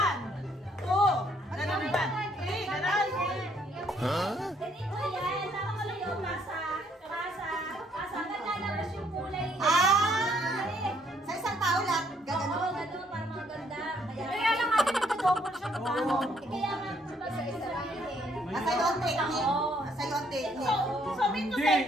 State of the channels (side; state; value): both; normal; correlation 0.68